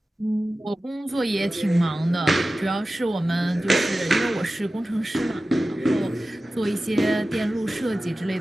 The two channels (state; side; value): normal; both; correlation 0.95